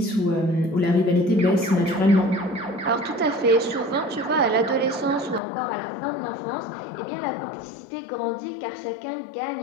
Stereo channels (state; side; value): drops out; right; at 5.4 s